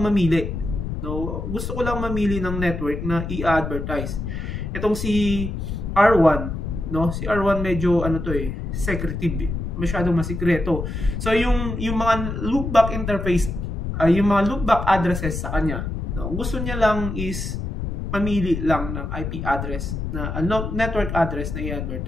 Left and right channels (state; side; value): noise; left; rumble, 4 dB below the sound